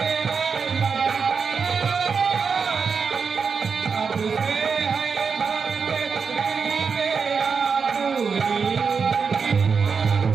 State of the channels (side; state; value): left; quieter; 5.6 dB